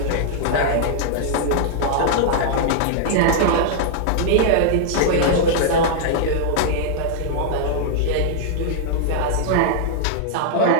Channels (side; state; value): both; different; correlation -0.01